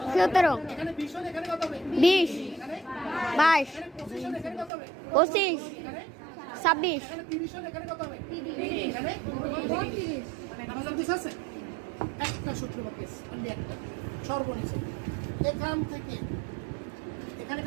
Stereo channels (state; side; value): drops out; left; at 4.7 s